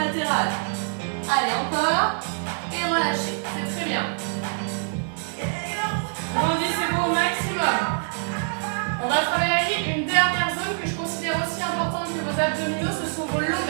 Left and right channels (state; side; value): silent; left; 62 dB below the other